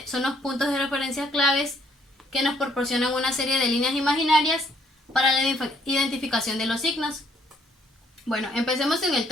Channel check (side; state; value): both; normal; correlation 0.68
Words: son los puntos de referencia claves que nos proporcionan una serie de líneas imaginarias para la identificación de los signos. Bueno, empecemos en el